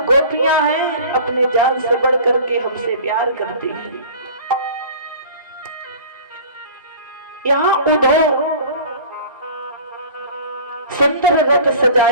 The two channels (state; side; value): inverted; both; correlation -0.42